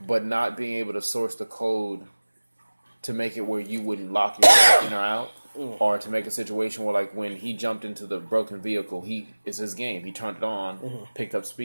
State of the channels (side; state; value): both; inverted; correlation -1.00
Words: but not being able to source the code to make it where you wouldn't lock yourself in or out, or to make a situation where, like, when he jumped into the broken vehicle, it's his game. He turned it on, picked up